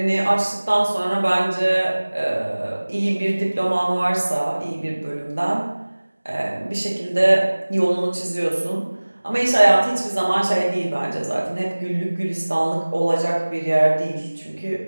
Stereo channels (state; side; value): inverted; both; correlation -1.00